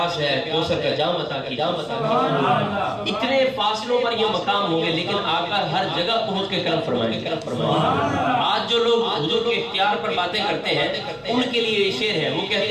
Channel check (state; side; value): identical; both; correlation 1.00